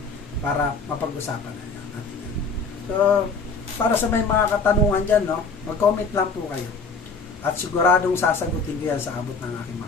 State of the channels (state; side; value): quieter; right; 4.4 dB